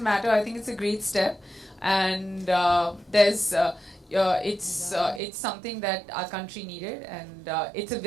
matter. I think it's a great step and it's something that our country needed, and it's a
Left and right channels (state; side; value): drops out; left; at 5.2 s